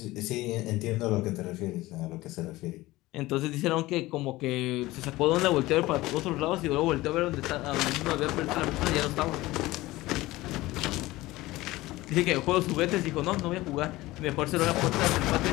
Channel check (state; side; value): quieter; right; 18.7 dB